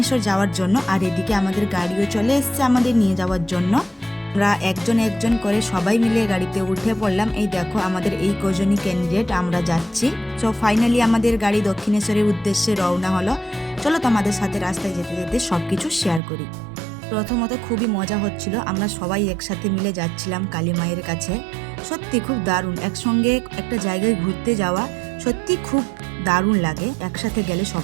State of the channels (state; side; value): drops out; left; at 16.2 s